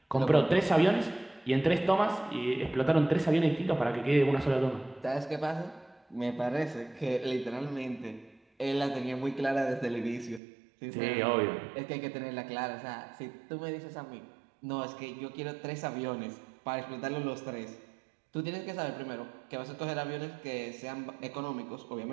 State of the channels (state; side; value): drops out; left; at 10.4 s